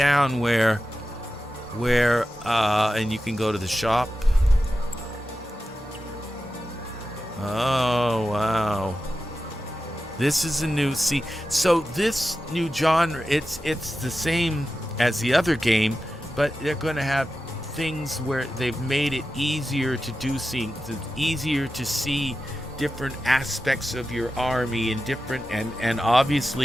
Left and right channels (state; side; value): normal; both; correlation 0.92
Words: where, and you can go to the shop. Oh wow, this is a new. So this new genre, it's the same as the other game, but they're going to have things where they've made it easier to do things, easier to see different aspects of your army and different and